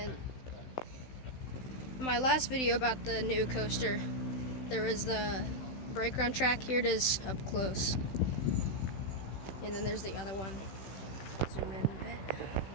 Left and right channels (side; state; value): right; late; 16 ms